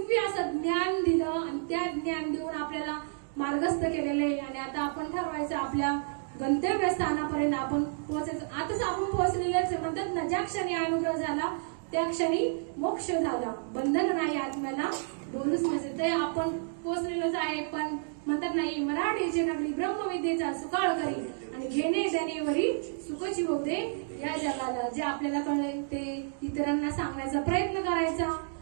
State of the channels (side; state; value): left; silent; digital silence